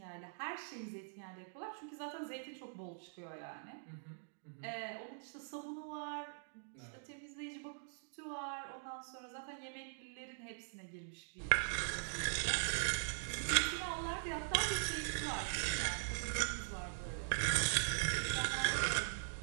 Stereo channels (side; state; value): left; silent; digital silence